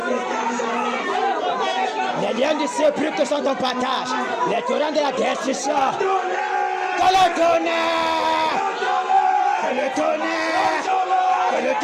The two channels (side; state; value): both; identical; correlation 1.00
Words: Les liens du sépulcre sont ton partage. Les torrents de la destruction. Que le tonnerre. Que le tonnerre. Que le